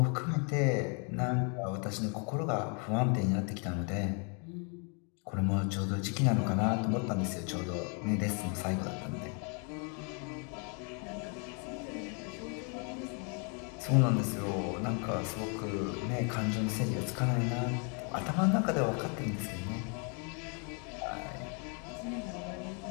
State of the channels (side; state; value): right; quieter; 37.7 dB